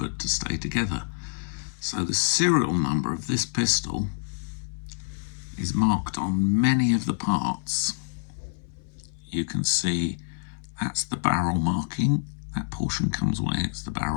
to stay together. So the serial number of this pistol is marked on many of the parts. You can see that's the barrel marking. That portion comes away, it's the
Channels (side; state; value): right; silent; 60 dB below the other